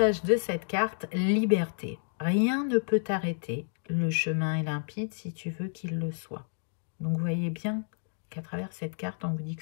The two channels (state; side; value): silent; right; digital silence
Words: de cette carte? Liberté. Rien ne peut t'arrêter. Le chemin est limpide si tu veux qu'il le soit. Donc, vous voyez bien qu'à travers cette carte, on vous dit que